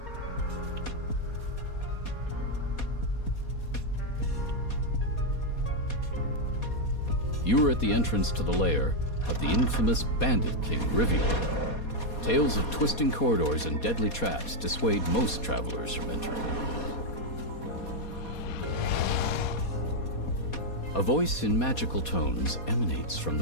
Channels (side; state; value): right; late; 4.2 ms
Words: You are at the entrance to the lair of the infamous Bandit King, Rivior. Tales of twisting corridors and deadly traps dissuade most travelers from entering. A voice in magical tones emanates from